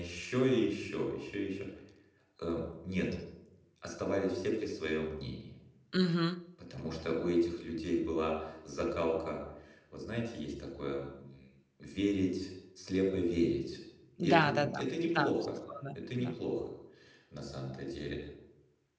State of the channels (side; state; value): both; identical; correlation 1.00